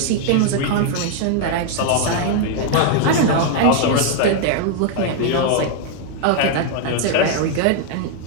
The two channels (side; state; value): both; different; correlation 0.00